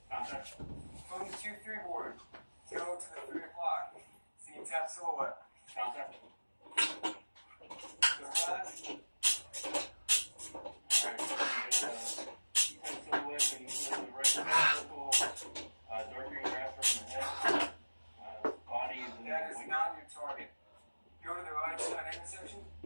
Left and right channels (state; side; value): inverted; both; correlation -1.00